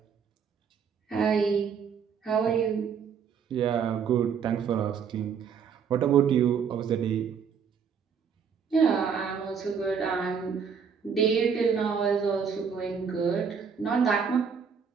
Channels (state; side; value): quieter; left; 6.7 dB